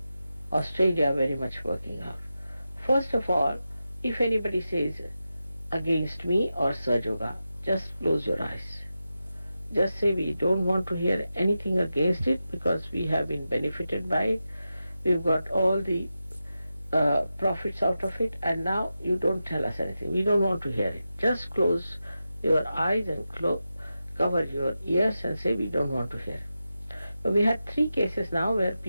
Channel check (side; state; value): both; inverted; correlation -0.91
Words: Australia very much working out. First of all, if anybody says against me or Saj Yoga, just close your eyes. Just say we don't want to hear anything against it because we have been benefited by it. We've got all the profits out of it, and now you don't tell us anything. We don't want to hear it. Just close your eyes and cover your ears and say we don't want to hear it. But we had 3 cases now where